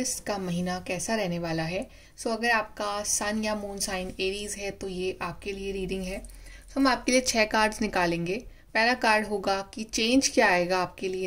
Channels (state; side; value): identical; both; correlation 1.00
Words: का महीना कैसा रहने वाला है। अगर आपका सन या मून साइन एरीज है तो ये आपके लिए रीडिंग है। हम आपके लिए 6 कार्ड्स निकालेंगे। पहला कार्ड होगा कि चेंज क्या आएगा आपके लिए